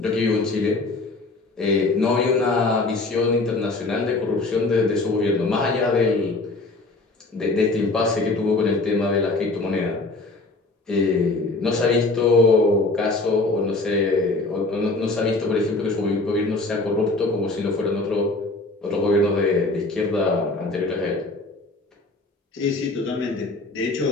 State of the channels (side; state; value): right; quieter; 3.2 dB